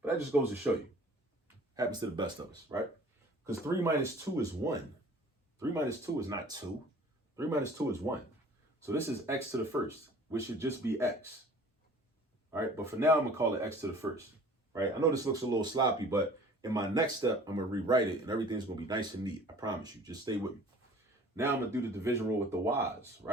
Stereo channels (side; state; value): both; normal; correlation 0.48